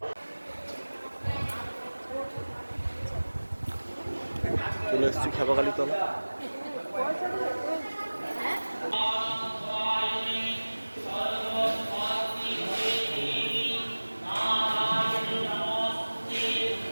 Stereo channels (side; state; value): both; inverted; correlation -1.00